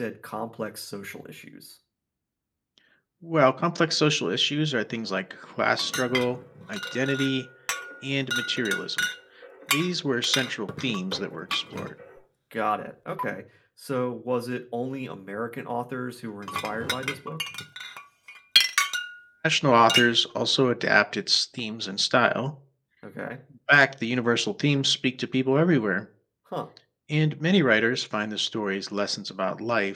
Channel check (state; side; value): identical; both; correlation 1.00